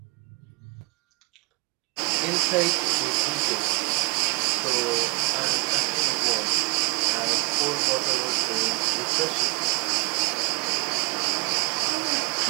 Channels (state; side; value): quieter; left; 29.5 dB